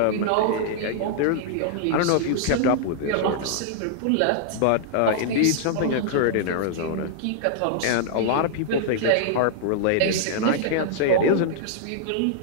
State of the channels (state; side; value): different; both; correlation -0.01